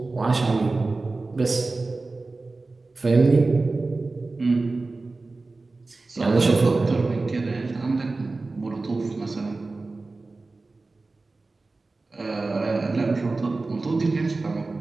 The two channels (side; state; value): left; quieter; 3.5 dB